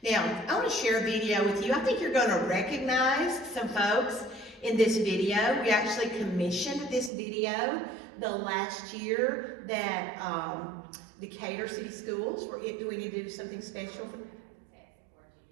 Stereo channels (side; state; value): left; drops out; at 7.1 s